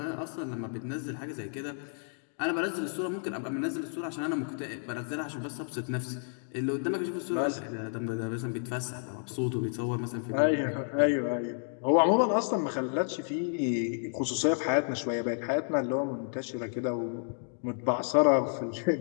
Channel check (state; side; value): silent; right; digital silence